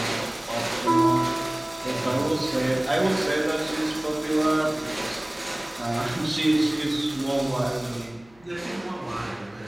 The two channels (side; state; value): left; noise; hum, 28 dB below the sound